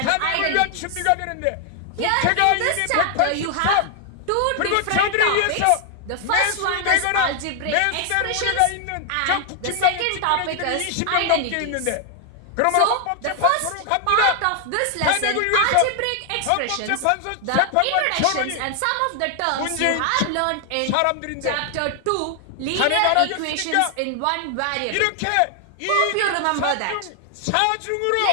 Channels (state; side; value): different; both; correlation 0.00